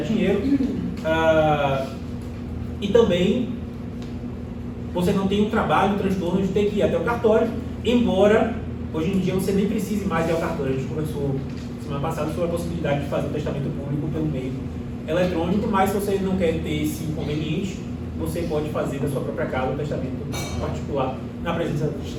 E também você não tem um trabalho, um transtorno de ter que ir até o cartório, embora hoje em dia você nem precise mais ir ao cartório. A gente conversou semana passada sobre a possibilidade de fazer o testamento público pelo meio eletrônico, mas se você não quer ter esse inconveniente, você pode fazer da sua própria casa o testamento particular na presença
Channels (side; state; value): both; identical; correlation 1.00